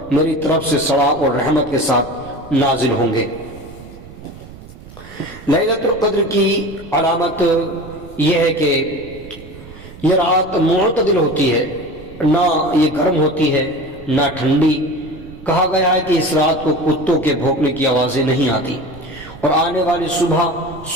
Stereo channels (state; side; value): noise; right; rumble, 18 dB below the sound